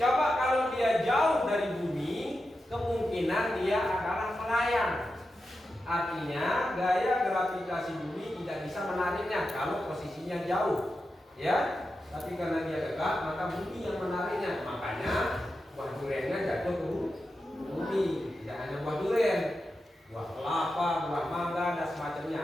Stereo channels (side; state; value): both; normal; correlation 0.90